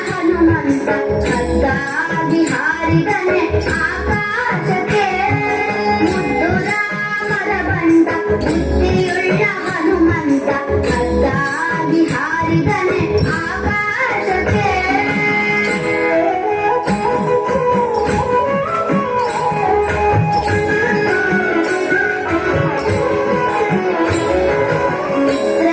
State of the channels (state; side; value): identical; both; correlation 1.00